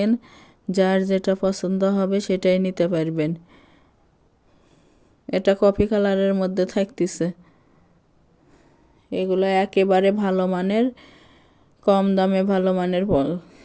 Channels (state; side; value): identical; both; correlation 1.00